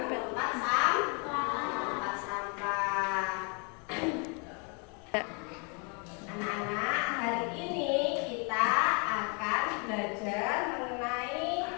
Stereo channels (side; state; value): right; quieter; 35.8 dB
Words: ke tempat sampah. Anak-anak, hari ini kita akan belajar mengenai